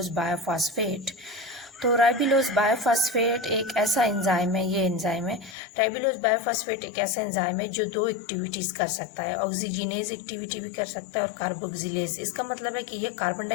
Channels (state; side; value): drops out; right; at 5.6 s